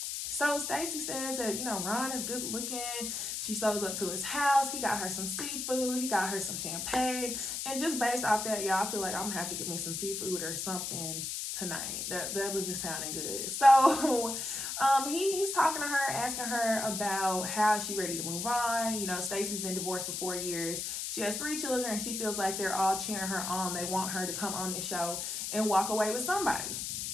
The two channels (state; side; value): noise; left; hiss, 3 dB below the sound